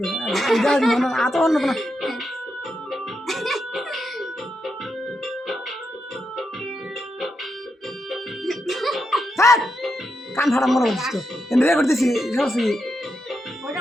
যা মনে আতো অন্য না কান ফাড়া মনে করছিস তো এনে করতেছি সবসি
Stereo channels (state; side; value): normal; both; correlation 0.84